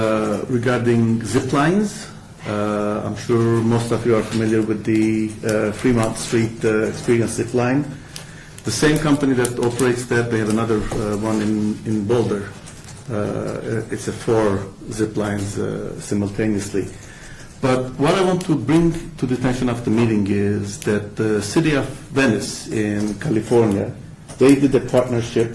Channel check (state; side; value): identical; both; correlation 1.00